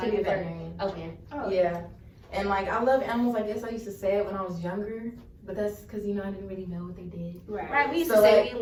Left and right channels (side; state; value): both; identical; correlation 1.00